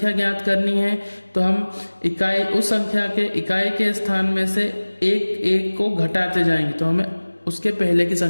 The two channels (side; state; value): both; inverted; correlation -1.00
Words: ज्ञात करनी है तो हम उस संख्या के इकाई के स्थान में से 1 को घटाते जाएंगे तो हमें उसके पहले की